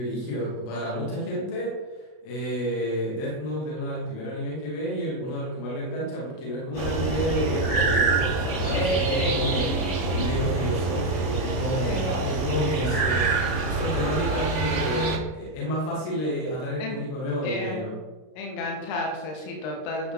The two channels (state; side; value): late; right; 32 ms